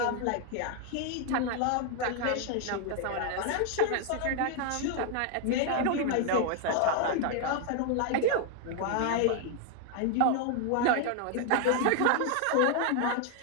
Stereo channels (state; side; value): different; both; correlation 0.00